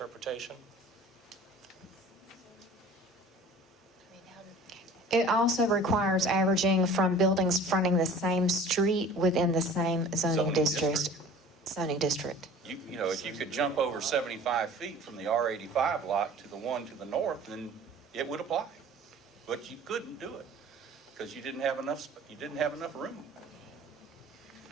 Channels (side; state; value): both; normal; correlation 0.45